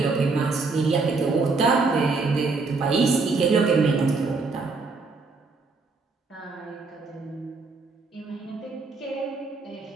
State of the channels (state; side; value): quieter; left; 4.1 dB